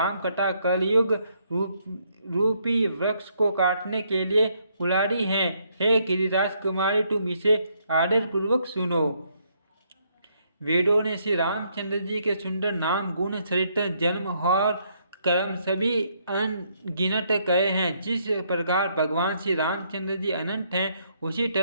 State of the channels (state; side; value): inverted; both; correlation -0.72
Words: कथा कलयुग रूपी वृक्ष को काटने के लिए कुल्हाड़ी है। हे गिरिराज कुमारी, तुम इसे आदर पूर्वक सुनो। वेदों ने श्री रामचंद्र जी के सुंदर नाम, गुण, चरित्र, जन्म और कर्म सभी अनगिनत कहे हैं। जिस प्रकार भगवान श्री रामचंद्र जी अनंत हैं, उसी